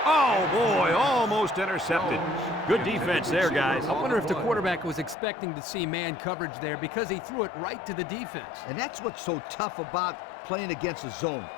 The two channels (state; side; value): drops out; right; at 5.2 s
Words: Oh, boy, almost intercepted. Good defense there, guys. I wonder if the quarterback was expecting to see man coverage there because he threw it right to the defense. And that's what's so tough about playing against a zone.